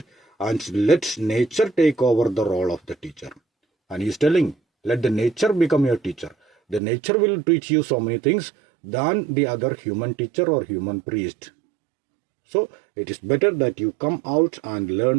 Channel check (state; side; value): drops out; left; at 6.8 s